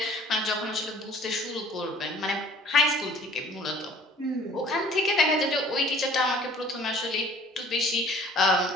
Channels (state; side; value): normal; both; correlation 0.52